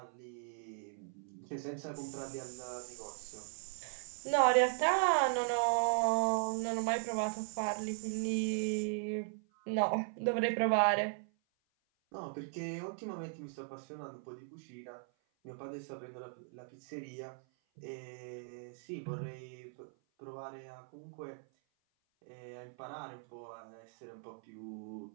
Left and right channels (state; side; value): silent; left; 52 dB below the other